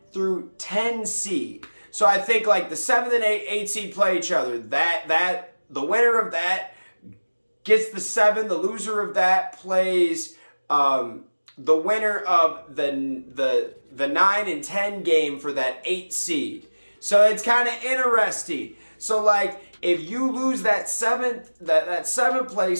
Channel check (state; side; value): inverted; both; correlation -1.00